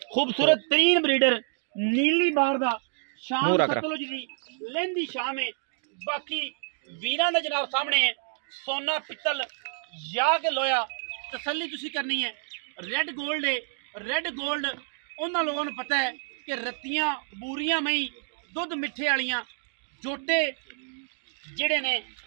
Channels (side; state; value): left; silent; digital silence